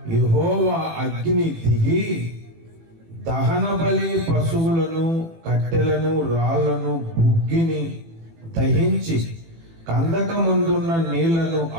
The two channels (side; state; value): left; late; 18 ms